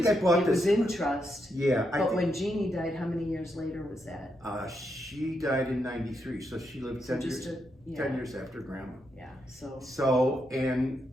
I bought it was this- in trust. Yeah. But when Jeannie died, how many years later was that? She died in 93, so she lived So 10 years, just 10 years after Grandma. Yeah, so, So, and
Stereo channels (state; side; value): normal; both; correlation 0.81